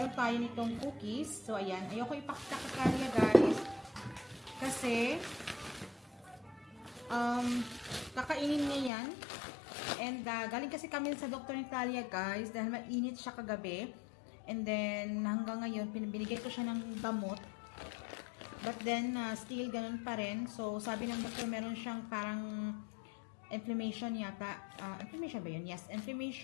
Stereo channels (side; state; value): right; drops out; at 8.9 s